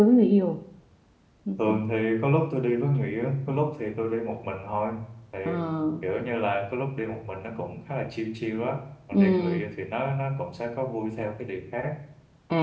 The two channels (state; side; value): identical; both; correlation 1.00